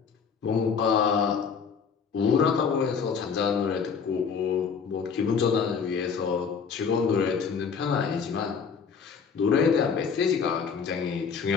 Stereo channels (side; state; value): right; quieter; 6.1 dB